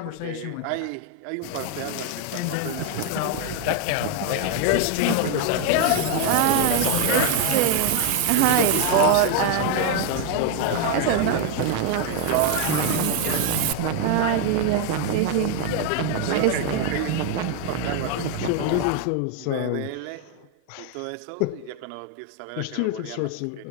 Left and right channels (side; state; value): both; different; correlation 0.01